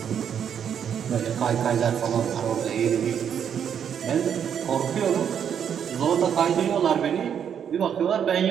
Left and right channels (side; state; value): left; quieter; 8.3 dB